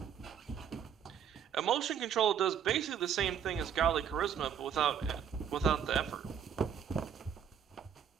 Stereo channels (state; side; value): quieter; left; 8.2 dB